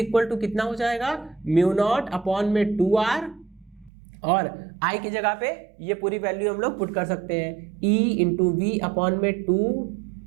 टू कितना हो जाएगा, म्यू नॉट अपॉन में 2r, और i की जगह पे ये पूरी वैल्यू हम लोग पुट कर सकते हैं, e इंटू वी अपॉन में 2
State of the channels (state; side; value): drops out; left; at 3.9 s